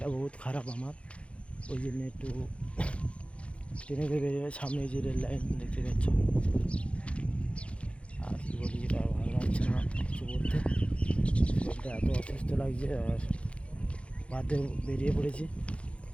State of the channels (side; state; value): right; late; 0.061 ms